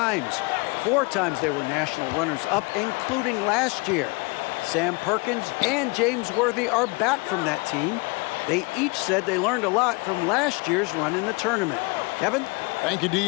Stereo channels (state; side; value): quieter; right; 28.4 dB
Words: 4 times they were national runners-up, including last year. Sam Perkins and James Worthy are back from that team. They each said they learned a lot from last year's run in the tournament. Kevin? Thank you,